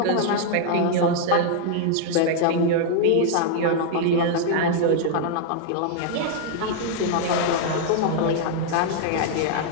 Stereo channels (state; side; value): different; both; correlation 0.00